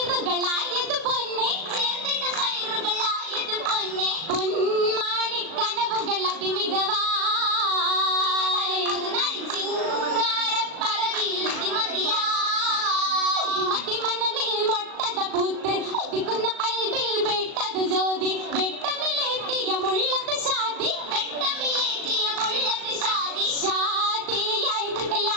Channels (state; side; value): late; left; 37 ms